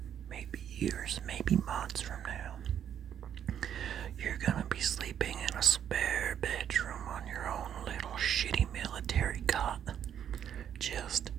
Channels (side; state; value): left; quieter; 9.3 dB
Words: maybe years, maybe months from now, you're gonna be sleeping in a spare bedroom on your own little shitty military cot. Just